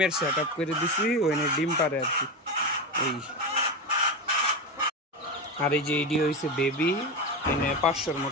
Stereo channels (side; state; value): both; normal; correlation 0.17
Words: সেট আপ করে দিছি, ওইখানে ডিম পারে আর কি। এই আর এই যে এইটি হয়েছে বেবি, এখানে 500-র